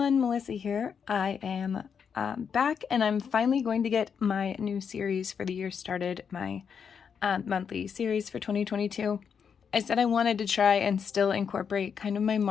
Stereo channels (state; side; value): quieter; right; 6.9 dB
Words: Melissa here. I am back and I'm finally going to get my new series for the year started, my monthly series for 2022. I said I wanted to try and still incorporate kind of my